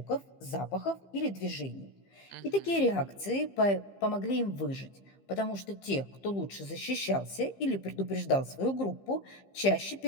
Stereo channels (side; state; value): right; late; 15 ms